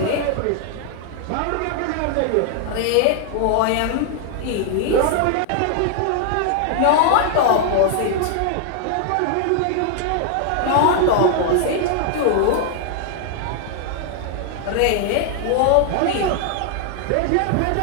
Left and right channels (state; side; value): different; both; correlation 0.00